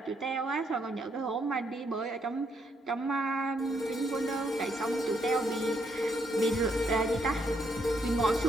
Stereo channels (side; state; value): both; normal; correlation 0.74